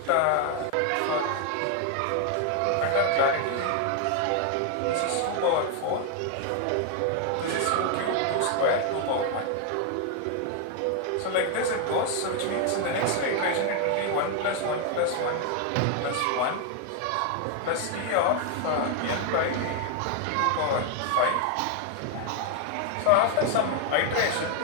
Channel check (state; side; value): different; both; correlation 0.00